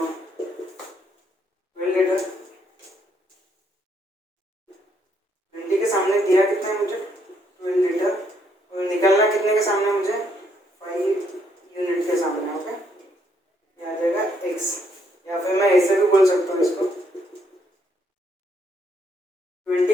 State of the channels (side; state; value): both; normal; correlation 0.72